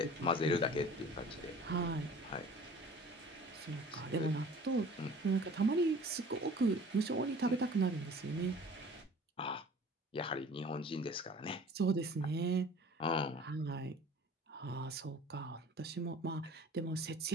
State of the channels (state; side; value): normal; both; correlation 0.46